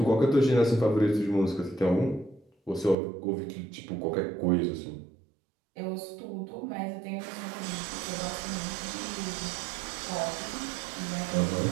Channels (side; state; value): left; drops out; at 3.0 s